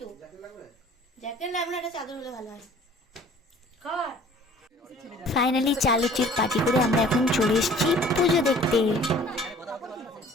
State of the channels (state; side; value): normal; both; correlation 0.51